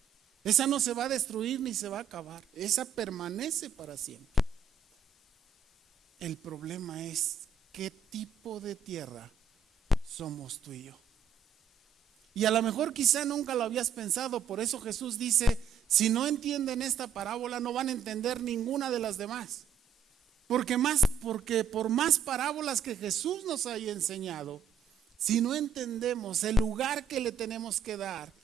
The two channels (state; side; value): quieter; left; 6.8 dB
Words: Esa no se va a destruir ni se va a acabar. Esa permanece para siempre. El problema es qué tipo de tierra somos tú y yo. Y a lo mejor quizá nunca lo habías pensado. Por eso Jesús dice, si no entienden esta parábola no van a entender ninguna de las demás. Porque por más parábolas que Jesús nos haya enseñado, si no entendemos el lugar que le tenemos que dar